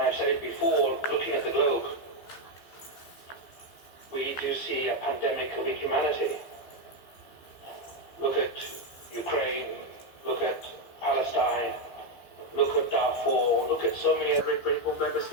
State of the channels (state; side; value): late; right; 15 ms